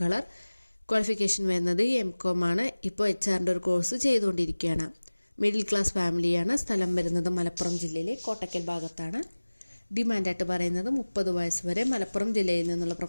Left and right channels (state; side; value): inverted; both; correlation -1.00